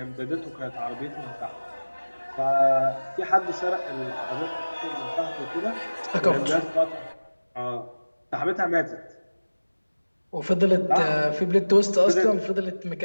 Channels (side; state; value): both; inverted; correlation -1.00